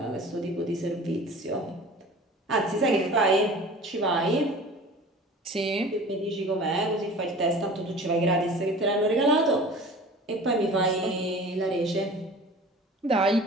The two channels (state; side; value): normal; both; correlation 0.42